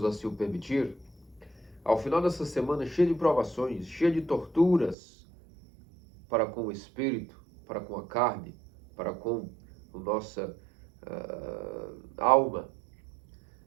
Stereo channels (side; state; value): left; drops out; at 5.0 s